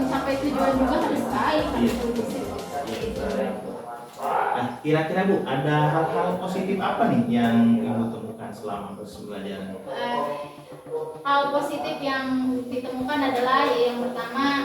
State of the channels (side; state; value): both; identical; correlation 1.00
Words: tujuan juga harus baik, harus kondusif. Nah, kira-kira Bu, ada hal-hal positif apa nih yang Ibu temukan selama proses pembelajaran? Hal positif yang ditemukan adalah yang